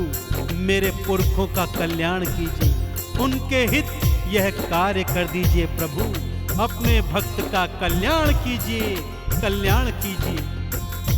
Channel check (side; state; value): both; identical; correlation 1.00